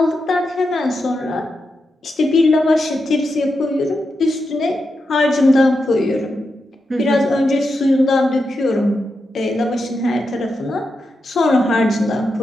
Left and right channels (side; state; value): both; normal; correlation 0.87